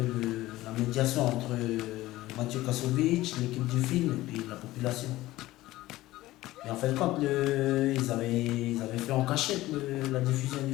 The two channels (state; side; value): quieter; right; 17.0 dB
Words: la médiation entre Mathieu Kassovitch, l'équipe du film et puis la population. Et en fait, quand ils avaient fait en cachette la diffusion du